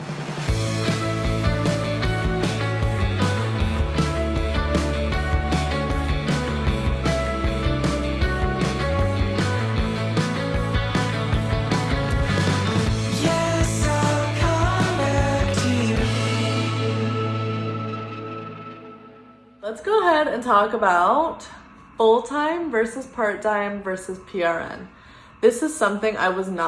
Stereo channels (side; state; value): both; identical; correlation 1.00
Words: Let's go ahead and talk about full-time versus part-time versus PRN. This is something I was